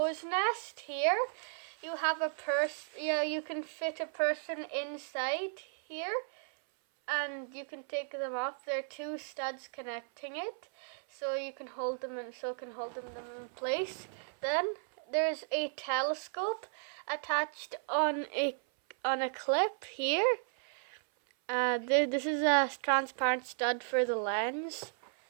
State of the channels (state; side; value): silent; left; 55 dB below the other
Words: nest here, you have a you can fit a person inside here and you can take them off. There are two studs connecting it, so you can hold them in place. Then there's a telescope attached on a clip here. This is a transparent stud for the lens,